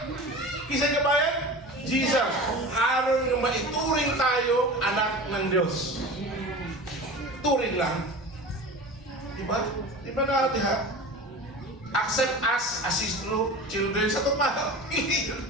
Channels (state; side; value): normal; both; correlation 0.34